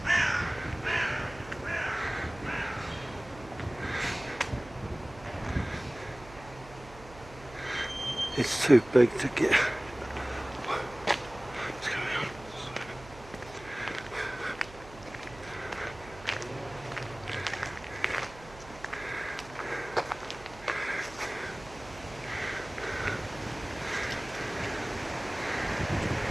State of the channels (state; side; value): noise; right; hum, 18 dB below the sound